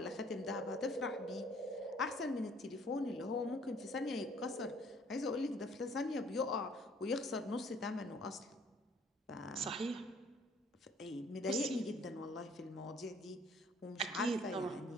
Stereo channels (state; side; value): normal; both; correlation 0.58